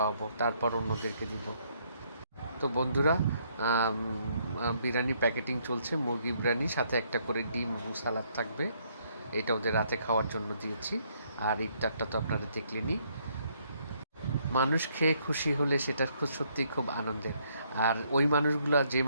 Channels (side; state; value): both; inverted; correlation -0.70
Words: তারপর অন্যদেরকে দিব। তো বন্ধুরা, বিরিয়ানি প্যাকেটিং চলছে, মুরগি বিরিয়ানি, সাথে একটা করে ডিম এবং সালাদ থাকবে। এটা ওদের রাতে খাওয়ার জন্য দিয়েছি। আর ইফতারটা তো আপনারা দেখলেনই। মানুষ খেয়ে খুশি হলে সেটা সত্যিই খুব আনন্দের। আর ওই মানুষগুলা, যে